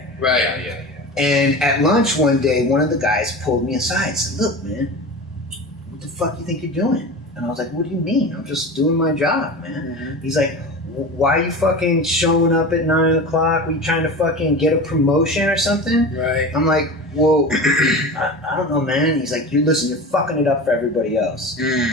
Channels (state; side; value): normal; both; correlation 0.30